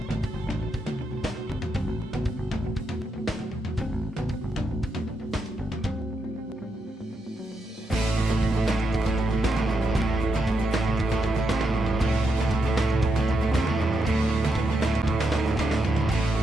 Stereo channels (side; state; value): both; normal; correlation 0.83